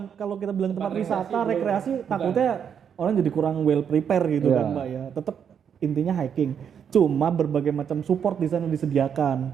kalau kita bilang tempat wisata, rekreasi, takutnya orang jadi kurang well prepare gitu Iya. kan Mbak ya. Tetap intinya hiking. Cuma berbagai macam support di sana disediakan.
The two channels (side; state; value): left; quieter; 7.8 dB